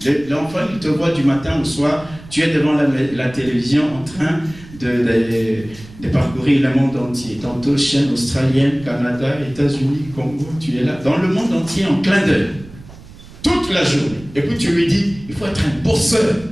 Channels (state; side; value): noise; right; rumble, 19 dB below the sound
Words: L'enfant, il te voit du matin au soir, tu es devant la télévision en train de parcourir le monde entier. Tantôt chaîne australienne, Canada, États-Unis, Congo, tu es là, dans le monde entier en clin d'œil. Toute la journée. Et puis tu lui dis, il faut être un bosseur.